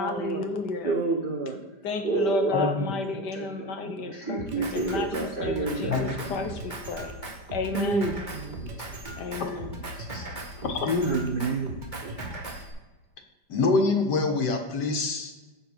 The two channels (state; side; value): late; right; 5.1 ms